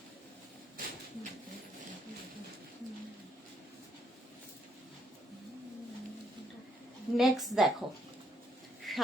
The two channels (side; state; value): both; normal; correlation 0.72